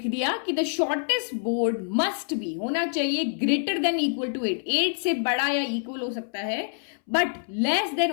दिया कि the shortest board must be, होना चाहिए ग्रेटर देन इक्वल टू 8, 8 से बड़ा या इक्वल हो सकता है, बट लेस देन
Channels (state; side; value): silent; right; 61 dB below the other